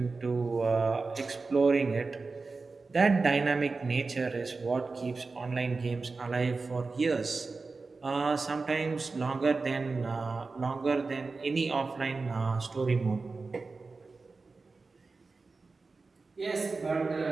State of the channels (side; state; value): left; quieter; 4.0 dB